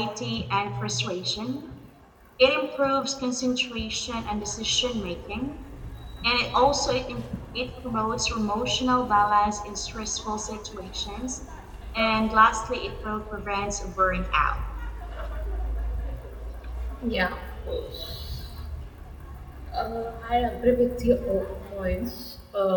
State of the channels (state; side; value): identical; both; correlation 1.00